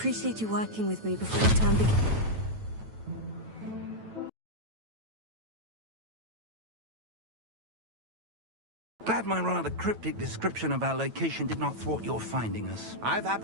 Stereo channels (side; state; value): left; late; 9.1 ms